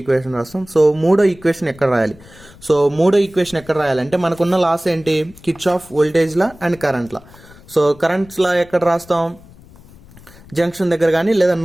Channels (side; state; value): left; noise; rumble, 23 dB below the sound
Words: ఈక్వేషన్ రాస్తాం. సో మూడో ఈక్వేషన్ ఎక్కడ రాయాలి? సో మూడో ఈక్వేషన్ ఎక్కడ రాయాలంటే మనకున్న లాస్ ఏంటి, Kirchhoff voltage law and current law. So currents law ఎక్కడ రాస్తాం, జంక్షన్ దగ్గర కానీ లేదా